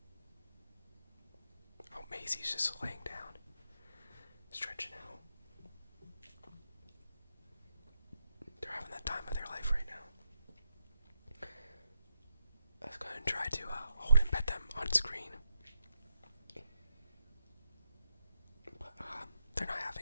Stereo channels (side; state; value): both; inverted; correlation -0.85